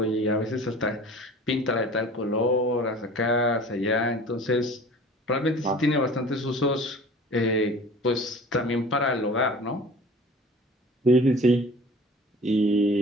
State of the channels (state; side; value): normal; both; correlation 0.43